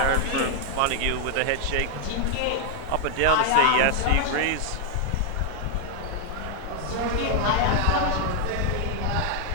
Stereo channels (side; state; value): both; different; correlation 0.00